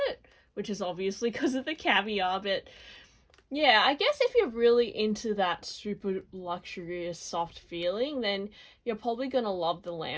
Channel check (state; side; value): identical; both; correlation 1.00